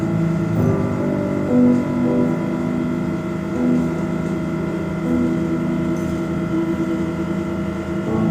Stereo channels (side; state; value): both; identical; correlation 1.00